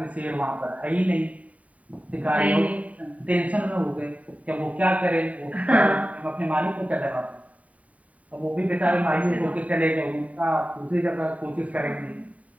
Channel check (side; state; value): left; late; 0.069 ms